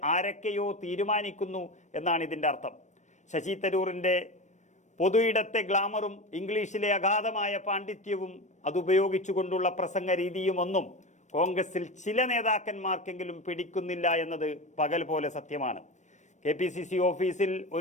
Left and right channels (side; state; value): right; late; 0.34 ms